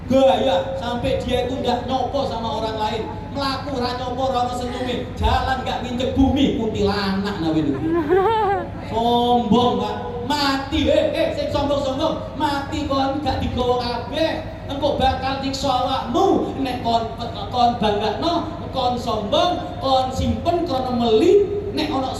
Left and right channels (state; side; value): identical; both; correlation 1.00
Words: Gaya sampai dia itu nggak nyopo sama orang lain, melaku ra nyopo ra ono senyume, jalan nggak nginjek bumi, kuntilanak nawe itu. Sombong Pak, mati sing sombong mati kon gak digawa kabeh, engko bakal nyiksa awakmu nek kon banggakno, kon sombong, kon simpen krana meli, nek ana